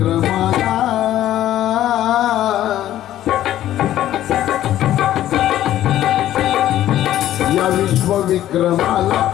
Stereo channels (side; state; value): right; quieter; 12.8 dB